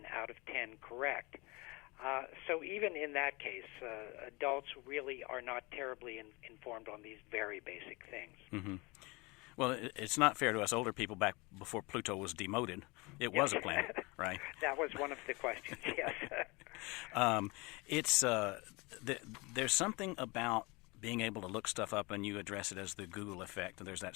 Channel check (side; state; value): right; quieter; 25.9 dB